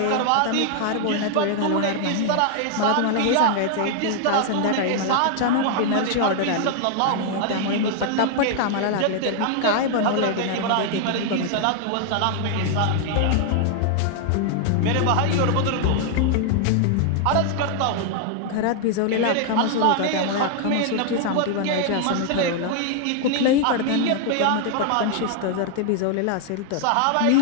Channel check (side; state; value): both; different; correlation 0.00